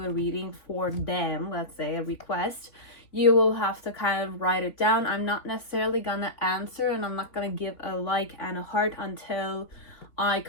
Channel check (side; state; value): right; late; 3.5 ms